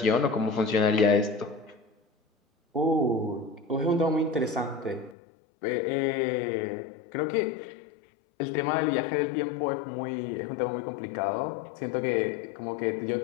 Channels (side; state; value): right; drops out; at 5.2 s